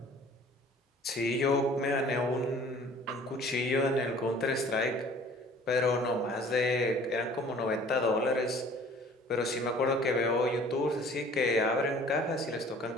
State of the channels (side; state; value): both; normal; correlation 0.51